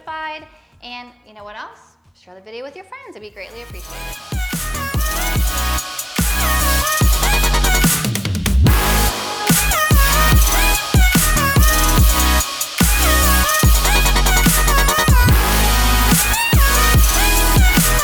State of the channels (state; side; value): identical; both; correlation 1.00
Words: And you know what else? Share the video with your friends. It'd be greatly appreciated.